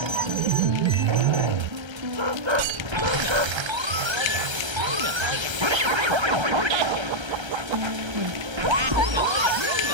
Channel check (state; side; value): late; left; 1.3 ms